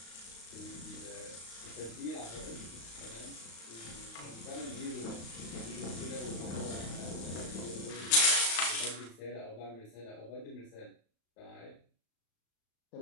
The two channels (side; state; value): right; late; 35 ms